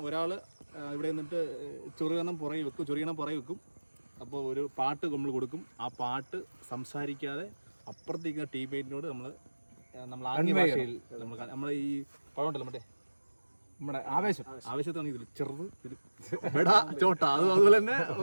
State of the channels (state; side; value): inverted; both; correlation -1.00